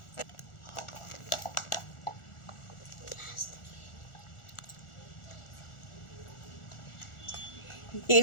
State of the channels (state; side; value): late; right; 1.4 ms